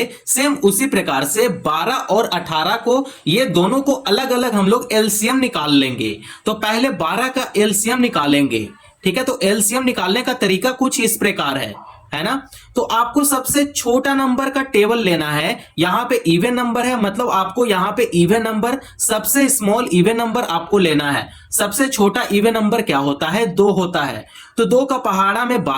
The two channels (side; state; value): both; identical; correlation 1.00